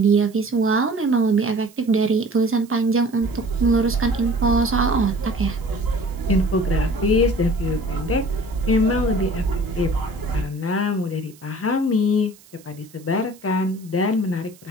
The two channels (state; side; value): noise; right; hiss, 26 dB below the sound